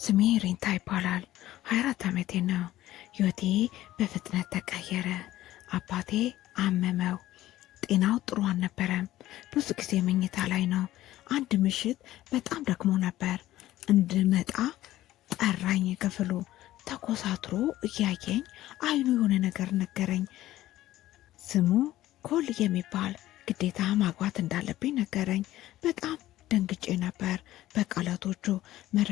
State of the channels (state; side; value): quieter; right; 14.9 dB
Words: ሬንታ ይባላል። 24 ዓመቴ ነው። ህይወቴ በፍጥነት ተቀየረ። አባቴ አመመው። ጤናው ጥሩ አልነበረም። ብዙ ጊዜ መኝታ ላይ ነው። አንድ ምሽት በጣም ደክሞ ነበር። እንድመጣ ጠራኝ። ክፍሉ ተኮሳትሮ እያየኝ አይኑ የሆነ ነገር ነገረኝ። ስሙ ኮል የሚባል ግዴታ ማግባት እንዳለብኝ ነገረኝ። በጣም ደንግጬ ነበር። በቃላቶቹ